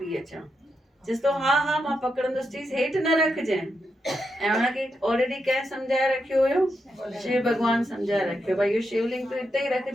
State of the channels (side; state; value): both; normal; correlation 0.84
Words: अचां। चयसि थो हा हा मां पकड़ंदुसि, चीज़ हेठि न रखजांइ। ऐं हुनखे ऑलरेडी कंहिं सम्झाए रखियो हुयो, शिव भॻवान सम्झाए रखियो भई इहो शिवलिंग तूं हिते ई